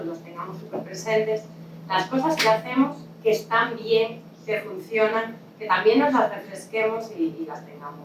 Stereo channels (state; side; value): identical; both; correlation 1.00